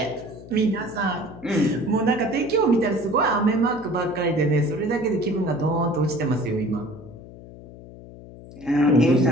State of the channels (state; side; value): noise; left; hum, 17 dB below the sound